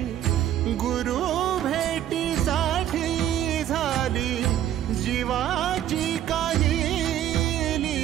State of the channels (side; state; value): left; quieter; 11.5 dB